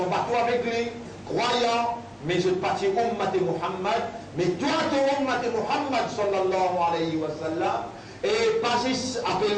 le bateau avec lui, croyants, mais je parti ummat Muhammad, mais toi tu ummat Muhammad sallallahu alayhi wa sallam, et pas après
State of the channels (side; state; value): both; identical; correlation 1.00